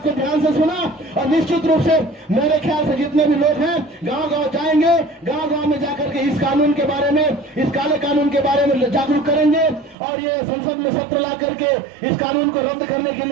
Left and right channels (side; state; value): left; drops out; at 10.0 s